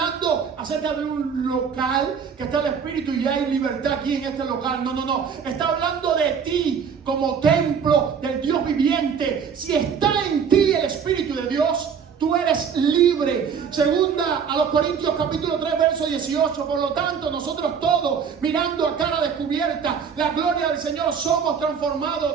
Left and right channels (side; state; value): left; quieter; 6.8 dB